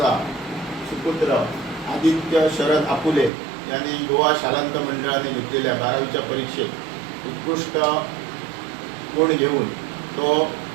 सुपुत्र आदित्य शरद आपुले यांनी गोवा शालांत मंडळाने घेतलेल्या 12वीच्या परीक्षेत उत्कृष्ट गुण घेऊन तो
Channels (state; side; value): drops out; left; at 3.3 s